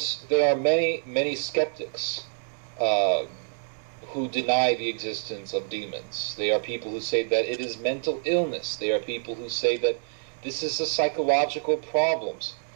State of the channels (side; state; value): left; silent; digital silence